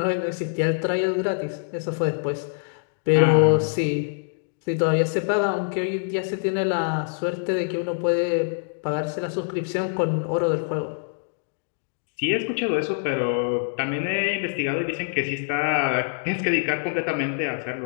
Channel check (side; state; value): right; silent; digital silence